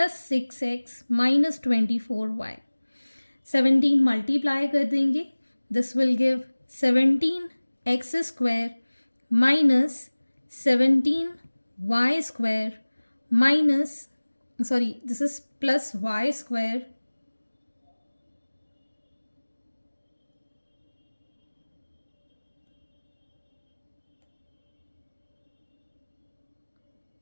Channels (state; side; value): inverted; both; correlation -1.00